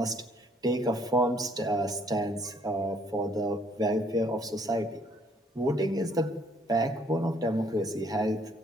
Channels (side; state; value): both; normal; correlation 0.64